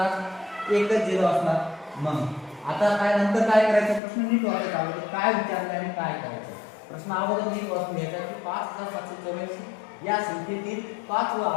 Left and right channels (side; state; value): right; drops out; at 4.0 s